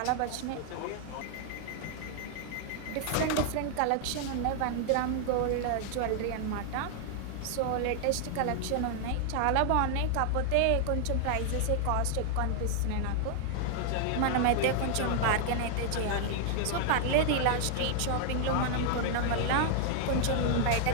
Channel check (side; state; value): both; different; correlation 0.00